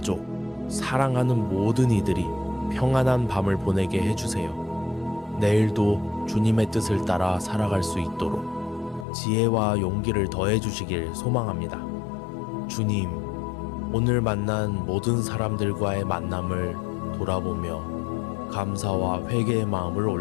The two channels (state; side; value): drops out; right; at 9.1 s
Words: 사랑하는 모든 이들이 평안한 밤을 보내게 해주세요. 내일도 주님의 뜻을 따라 살아갈 수 있도록 지혜와 용기를 더해 주시길 소망합니다. 주님, 오늘 만난 모든 사람들과의 만남을 돌아보며 감사와 회개의 마음을